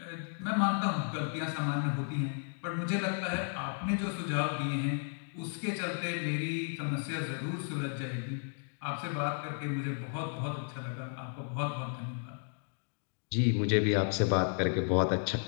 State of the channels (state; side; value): silent; right; 55 dB below the other